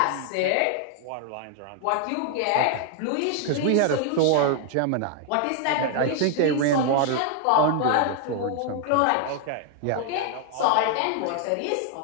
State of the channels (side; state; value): both; different; correlation 0.00